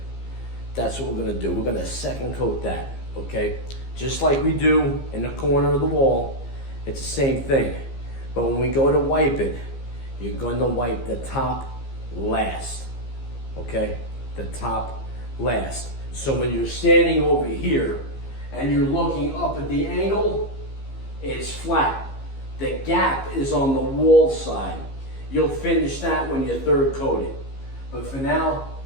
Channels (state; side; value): late; right; 15 ms